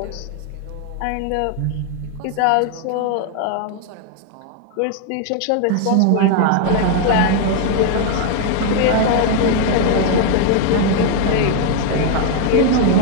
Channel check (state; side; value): different; both; correlation 0.01